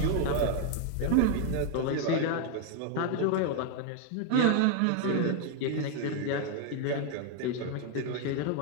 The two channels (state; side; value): different; both; correlation 0.00